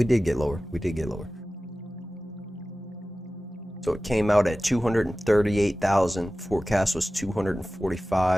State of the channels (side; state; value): both; normal; correlation 0.96